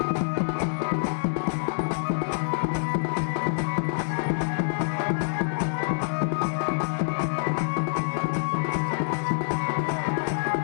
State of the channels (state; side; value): silent; right; 61 dB below the other